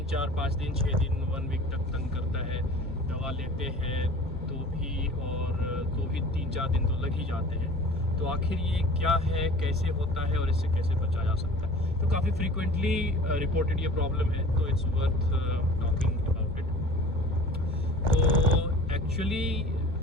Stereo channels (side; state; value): both; normal; correlation 0.43